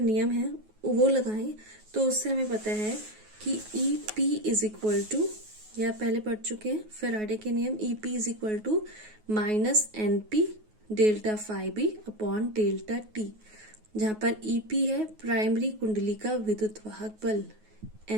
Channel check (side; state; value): left; late; 9.4 ms